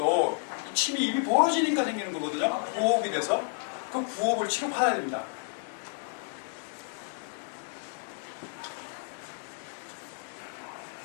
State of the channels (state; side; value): silent; right; digital silence